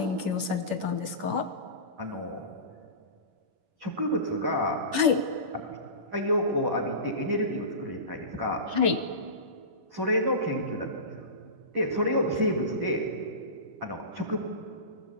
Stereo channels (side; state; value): left; late; 10 ms